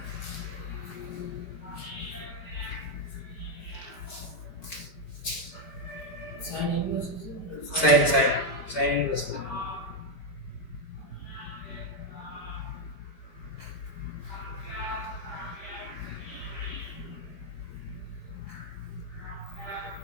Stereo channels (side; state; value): right; late; 5.0 ms